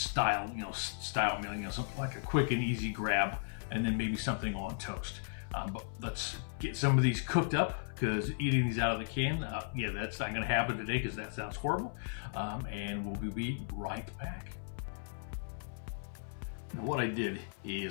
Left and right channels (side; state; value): right; silent; 54 dB below the other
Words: meal, something like a quick and easy grab, and then maybe something on toast. But let's get some of these cooked up, because eating these out of the can, that's not going to happen today because that sounds horrible. And we'll be right back. Now, what I did